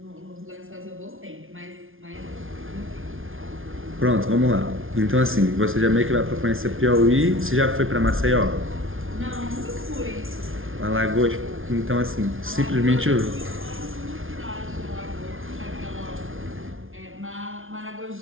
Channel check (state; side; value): late; left; 0.59 ms